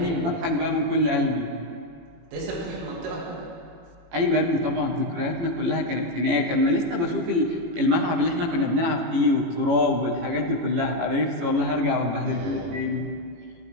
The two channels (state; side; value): late; left; 18 ms